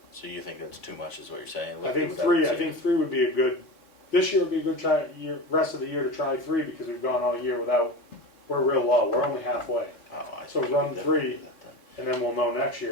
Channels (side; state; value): right; late; 3.6 ms